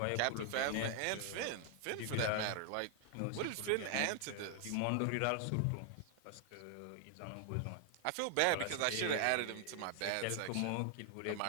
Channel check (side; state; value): both; different; correlation 0.00